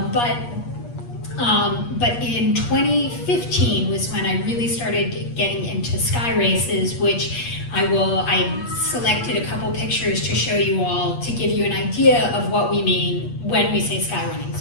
in 2015 was when I really started getting into sky races, which I selected a couple pictures to show you all to give you an idea of what we mean when we say sky running.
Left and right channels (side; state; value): right; late; 8.4 ms